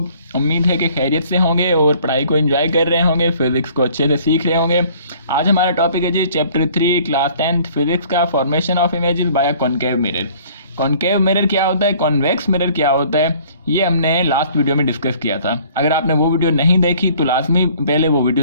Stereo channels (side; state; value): both; inverted; correlation -0.55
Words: उम्मीद है कि खैरियत से होंगे और पढ़ाई को एंजॉय कर रहे होंगे, फिजिक्स को अच्छे से सीख रहे होंगे। आज हमारा टॉपिक है जी चैप्टर 3 क्लास 10th फिजिक्स का, formation of images bye concave mirror. Concave mirror क्या होता है, कॉन्वेक्स मिरर क्या होता है, ये हमने लास्ट वीडियो में डिस्कस किया था। अगर आपने वो वीडियो नहीं देखी तो लाजमी पहले वो